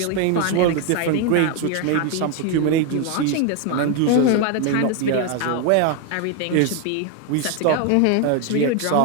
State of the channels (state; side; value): different; both; correlation 0.01